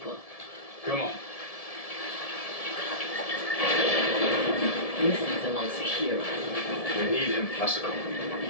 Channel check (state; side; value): late; right; 1.7 ms